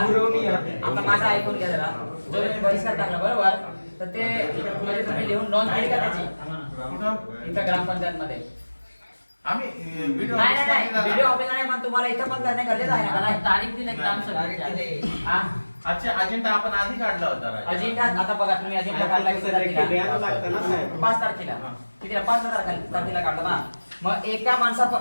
आता माझा ऐकून घ्या जरा जर तुम्ही बहिष्कार टाकला बरोबर तर ते म्हणजे तुम्ही लिहून नोंद केली का त्याची कुठं इथं ग्रामपंचायत मध्ये आम्ही व्हिडिओ नाही व्हिडिओ ऑफिस नाही पण तुम्हाला इथं पण करणे गरजेचं आहे ना मला तारीख दिली ग्रामसभेची हा अच्छा अजेंडा आपण आधी काढला होता राजा. अजिंठा आता बघा तुम्ही अजिंठा काढला किती तारखेला 5 तारखेला कितीला 5 तारखेला काढला ना. मग एका माणसा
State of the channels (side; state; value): both; inverted; correlation -1.00